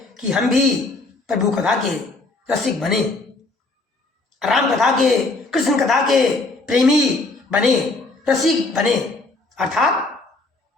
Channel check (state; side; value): quieter; right; 3.3 dB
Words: कि हम भी प्रभु कथा के रसिक बने, राम कथा के, कृष्ण कथा के प्रेमी बने, रसिक बने, अर्थात